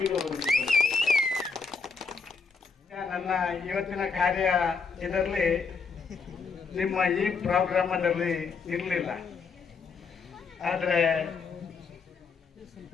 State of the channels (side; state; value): right; quieter; 5.1 dB